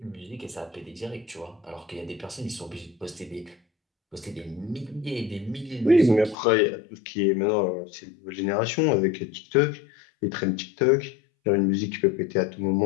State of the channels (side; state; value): right; drops out; at 6.4 s